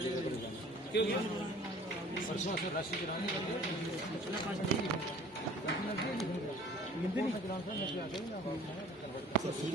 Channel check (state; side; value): normal; both; correlation 0.50